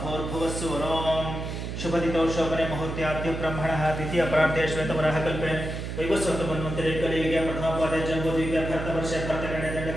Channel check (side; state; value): right; noise; hum, 5 dB below the sound